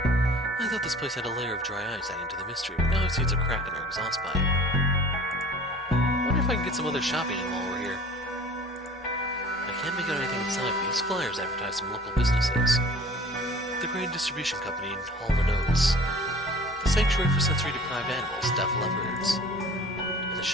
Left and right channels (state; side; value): normal; both; correlation 0.46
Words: thought this place had a layer of dry ice adding to the mystery, but now I see it's a crack in our exhaust pipe. Wonder if I can get some other shopping in while we're here. I can't make out anything inside, but these flyers advertise some local businesses. The Grain Distribution Company in Hall & Oates. The Sanctuary for Sensory-Deprived Animals, Deaf Leopards. And the